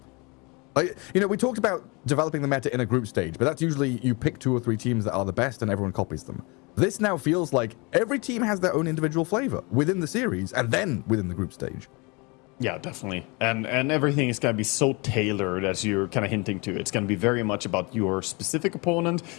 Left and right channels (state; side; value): quieter; right; 28.5 dB